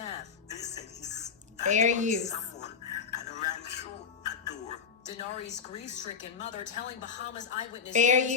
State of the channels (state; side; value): quieter; right; 6.2 dB